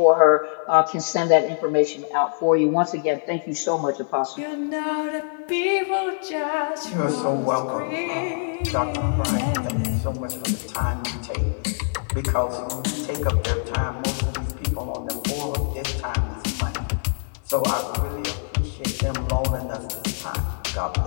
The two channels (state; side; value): silent; right; digital silence